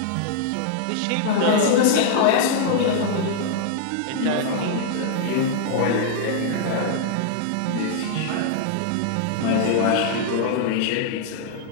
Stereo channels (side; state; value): both; different; correlation -0.01